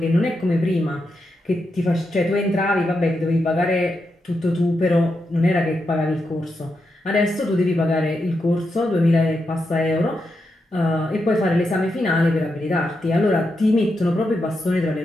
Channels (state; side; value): normal; both; correlation 0.85